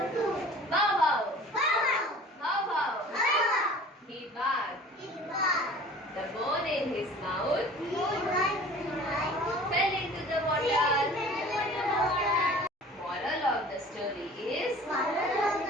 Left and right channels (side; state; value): both; normal; correlation 0.45